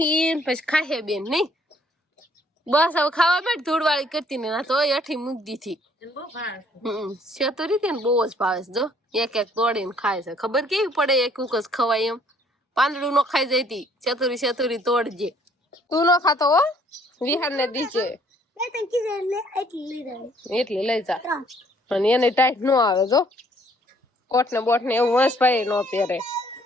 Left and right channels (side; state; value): both; normal; correlation 0.63